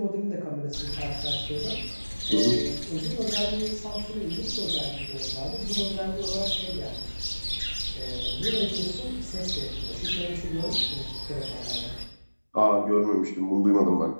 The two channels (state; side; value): inverted; both; correlation -1.00